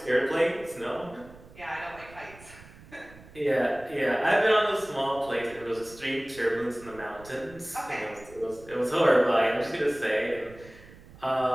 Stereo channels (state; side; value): noise; right; rumble, 21 dB below the sound